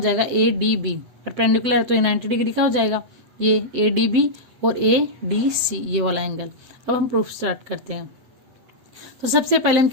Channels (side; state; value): left; late; 7.8 ms